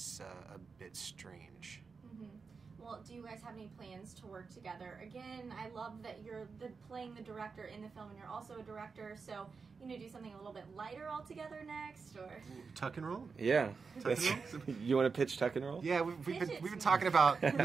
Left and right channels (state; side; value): quieter; left; 5.0 dB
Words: a bit strange. Mm-hmm. Well, do you guys have any plans to work together? Again, I love that you're playing the director in the film, and you're also a director, so you know, do something a little bit lighter altogether next, or Tuck and roll? Yeah. Tuck and roll? You want to pitch Tuck and Roll? Yeah, we've been talking about